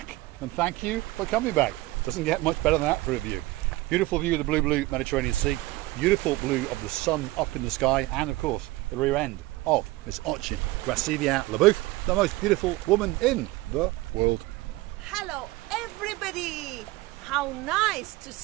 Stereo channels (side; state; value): left; quieter; 19.7 dB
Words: and thank you for coming back. Doesn't get much better than that for a view. Beautiful view of the blue Mediterranean Sea, beautiful blue of the sun up in the sky, and of course the rear end of Miss Ayia Napa, the most beautiful woman in the world. Hello everybody! How nice to